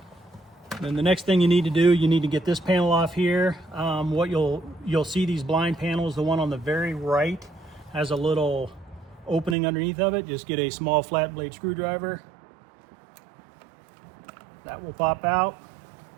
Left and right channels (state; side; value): drops out; left; at 9.6 s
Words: Then the next thing you need to do, you need to get this panel off here. What you'll see these blind panels, the one on the very right has a little opening underneath of it. Just get a small flat blade screwdriver. That will pop out.